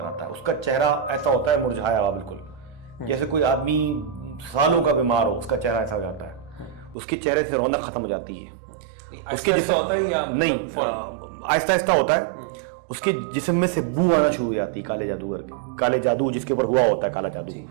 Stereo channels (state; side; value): drops out; left; at 7.0 s